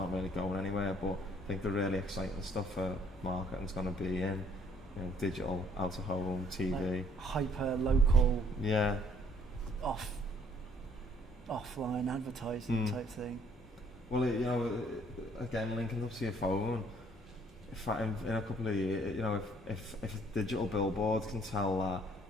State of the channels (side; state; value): both; normal; correlation 0.62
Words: really going anywhere, but I think the really exciting stuff for marketing's going to be in, you know, digital, out of home, TV, like hyper local, yeah, offline advertising type thing. Well, you know, again, linking up to your phone, in a couple of years, you know, if a digital billboard can tell